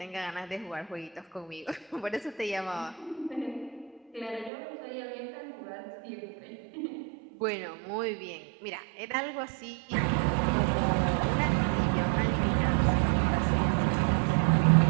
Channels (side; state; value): left; drops out; at 4.5 s